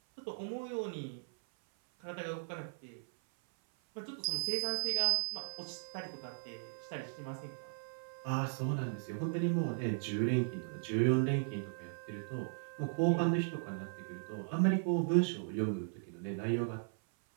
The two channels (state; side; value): silent; left; 53 dB below the other